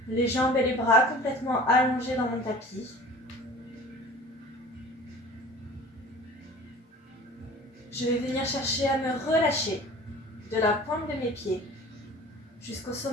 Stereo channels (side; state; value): both; normal; correlation 0.43